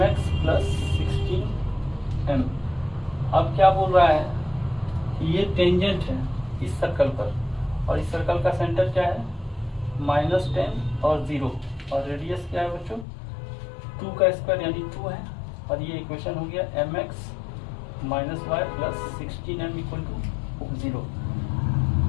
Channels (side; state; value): right; drops out; at 13.1 s